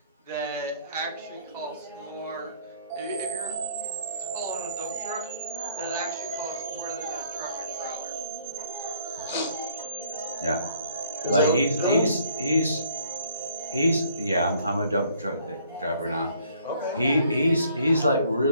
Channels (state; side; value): inverted; both; correlation -0.61